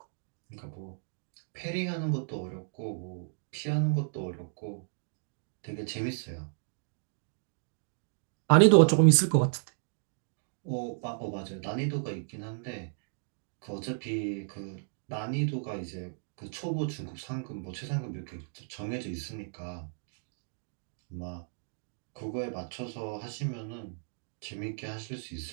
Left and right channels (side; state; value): left; silent; digital silence